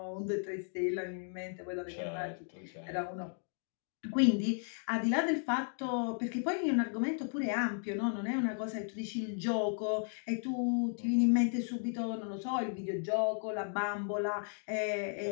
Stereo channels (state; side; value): silent; right; 54 dB below the other